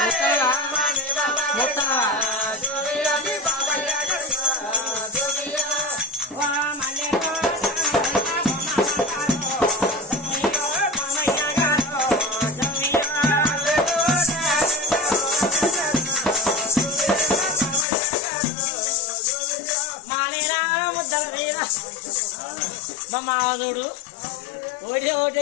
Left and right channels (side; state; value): right; drops out; at 17.9 s